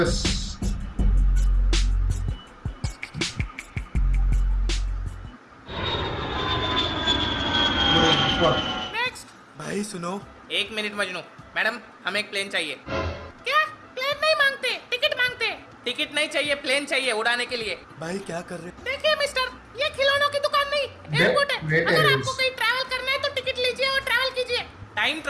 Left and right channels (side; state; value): both; identical; correlation 1.00